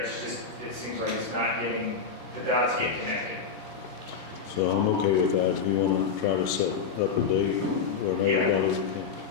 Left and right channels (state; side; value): quieter; right; 5.8 dB